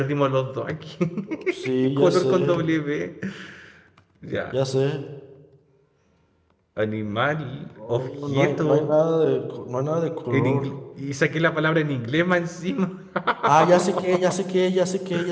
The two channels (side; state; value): both; identical; correlation 1.00